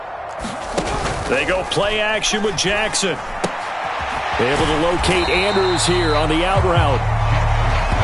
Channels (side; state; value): both; identical; correlation 1.00